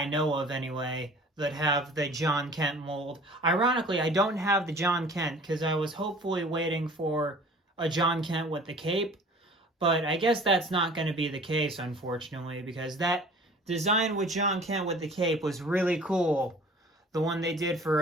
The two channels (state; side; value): normal; both; correlation 0.47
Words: know of anyway that have the John Kent mold. Ironically, I don't have the John Kent because I was hopefully waiting for a John Kent with the cape. But I guess that's not going to be the case, unfortunately, because that design with John Kent with the cape was really cool. The one they did